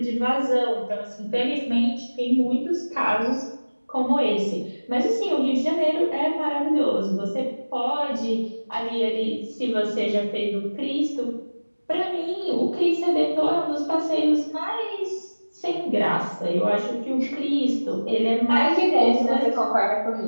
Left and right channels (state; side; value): inverted; both; correlation -1.00